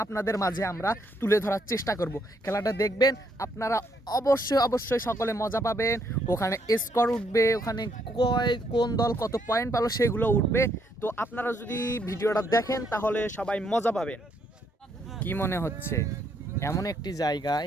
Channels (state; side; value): normal; both; correlation 0.72